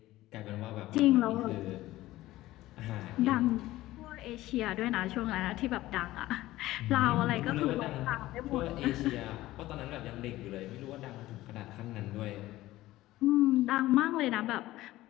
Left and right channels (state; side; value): quieter; right; 16.5 dB